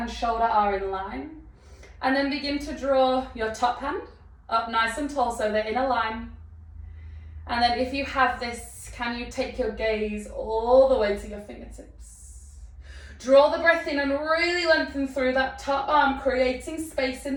shoulder are in line, and then begin to draw your top hand up nice and tall so they're in a line. And then if you have this, can you take your gaze all the way to your fingertips? Draw the breath in and really lengthen through that top arm, creating space in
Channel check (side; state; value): both; identical; correlation 1.00